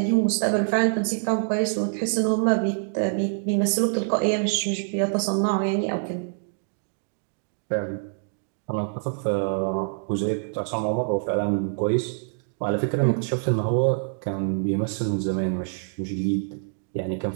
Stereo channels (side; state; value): left; silent; digital silence